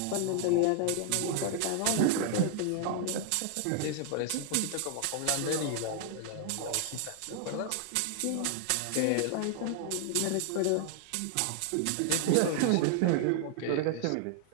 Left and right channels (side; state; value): both; different; correlation 0.00